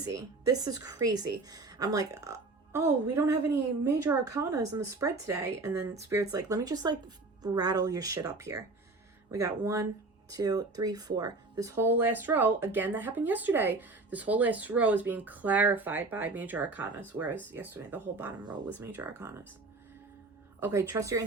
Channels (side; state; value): left; quieter; 3.4 dB